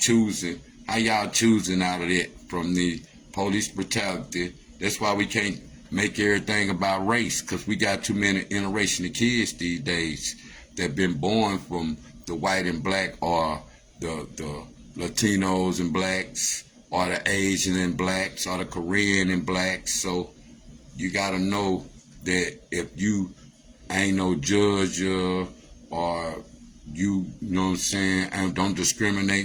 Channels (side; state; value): both; identical; correlation 1.00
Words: How y'all choosing out of that from the police brutality? That's why we can't make everything about race, because we got too many interracial kids these days that been born from the white and black, or the Latinos and blacks, or the Asian and blacks, or the Korean and blacks. So you gotta know that if you ain't no judge, or you know what I'm saying, and don't